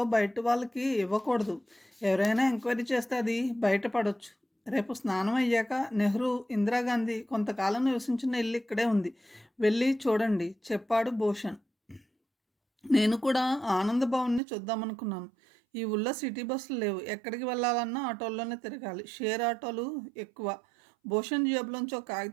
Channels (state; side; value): drops out; left; at 14.4 s